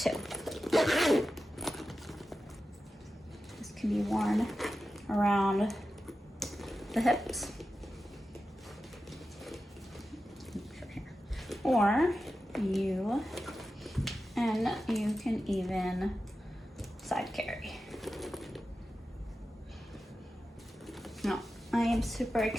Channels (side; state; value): both; normal; correlation 0.92